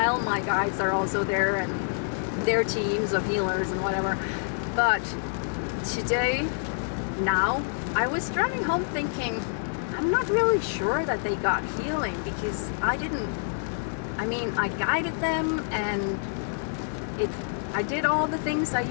my guides are also there and their teams of healers and whatever. But today, now, I was driving home thinking, I'm not really sure that they got healing, because I guided them and I did all the things I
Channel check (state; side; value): silent; right; digital silence